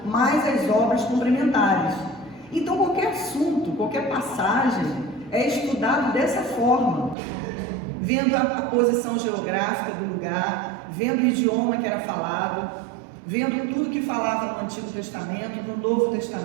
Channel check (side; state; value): left; drops out; at 7.2 s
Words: mais as obras complementares. Então qualquer assunto, qualquer passagem é estudado dessa forma, vendo a posição geográfica do lugar, vendo o idioma que era falado, vendo tudo que falava no Antigo Testamento, no Novo